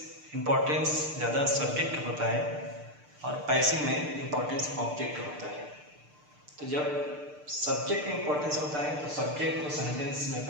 इम्पोर्टेंस ज़्यादा सब्जेक्ट होता है और पैसिव में इम्पोर्टेंस ऑब्जेक्ट होता है। तो जब सब्जेक्ट में इम्पोर्टेंस होता है तो सब्जेक्ट को सेंटेंस में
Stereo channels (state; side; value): late; left; 6.7 ms